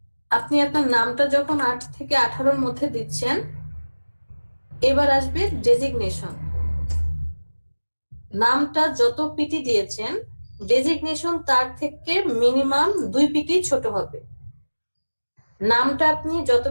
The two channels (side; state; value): both; inverted; correlation -1.00